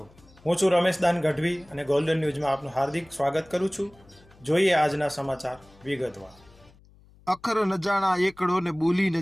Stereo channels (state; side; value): noise; left; hum, 27 dB below the sound